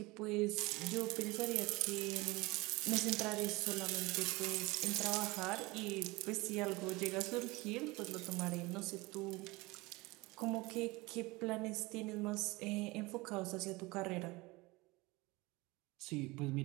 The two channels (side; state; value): left; quieter; 22.7 dB